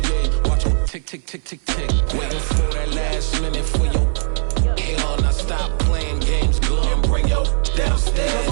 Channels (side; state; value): left; silent; 59 dB below the other